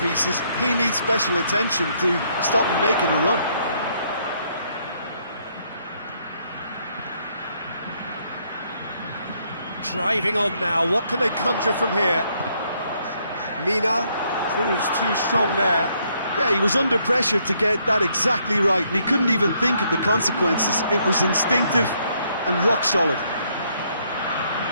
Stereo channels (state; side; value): inverted; both; correlation -0.71